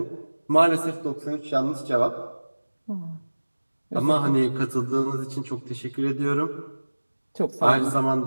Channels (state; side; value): inverted; both; correlation -1.00